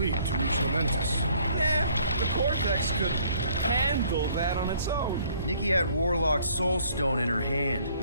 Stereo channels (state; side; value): inverted; both; correlation -0.61